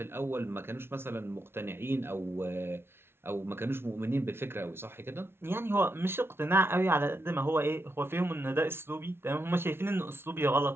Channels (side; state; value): left; late; 0.12 ms